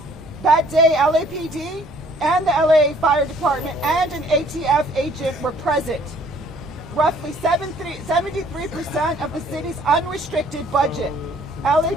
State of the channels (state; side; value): normal; both; correlation 0.59